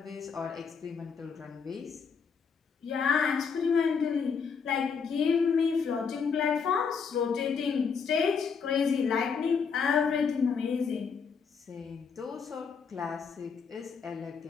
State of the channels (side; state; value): right; quieter; 6.0 dB